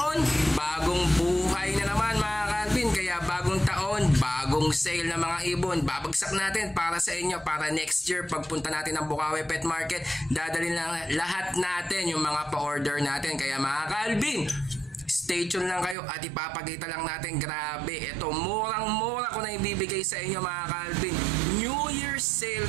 bagong buhay na naman mga Calvin. Kaya bagong taon, bagong sale ng mga ibon. Babagsak natin para sa inyo, para next year pagpunta natin ng Bukawi Pet Market, dadalhin lang lahat natin yung mga pa-order natin. Kaya mga Calvin, stay tuned lang kayo at ipapakita lang natin. Grabe, ito murang-mura ko na ibibigay sa inyo mga Calvin. New Year's sale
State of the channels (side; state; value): left; drops out; at 16.0 s